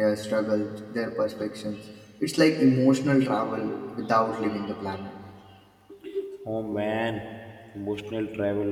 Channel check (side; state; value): both; identical; correlation 1.00